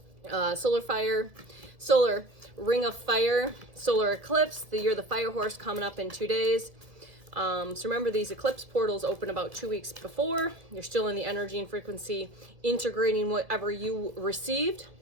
Solar ring of fire, solar eclipse, the year of the fire horse coming up in 2 days. So remember, these eclipse portals open about 2 weeks before. You're still in the energy and frequency, integrating whatever you received.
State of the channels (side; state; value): left; late; 1.7 ms